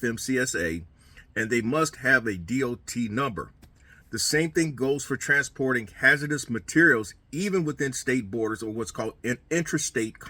and they must have a DOT number. The same thing goes for transporting hazardous materials even within state borders, or what's called an intrastate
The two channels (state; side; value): identical; both; correlation 1.00